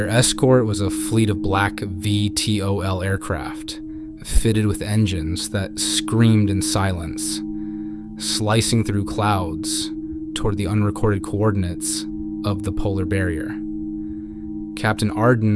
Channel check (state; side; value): identical; both; correlation 1.00